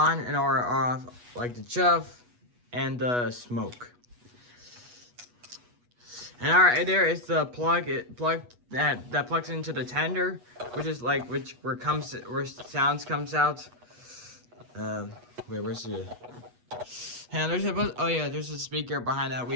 and or off, like the chuff and the smoke. And alright, there is the plug that plugs into the tender, where sounds comes out. Wait, where's the? And there's a speaker behind that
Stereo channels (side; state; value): left; late; 8.2 ms